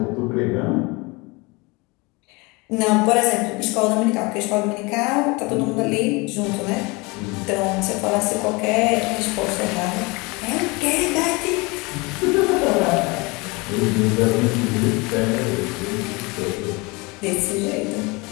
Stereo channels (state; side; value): quieter; right; 26.1 dB